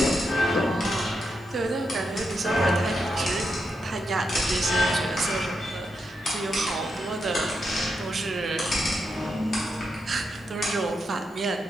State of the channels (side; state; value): both; normal; correlation 0.84